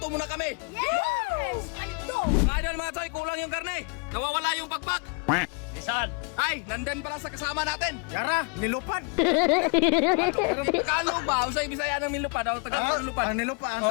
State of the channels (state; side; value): quieter; right; 33.8 dB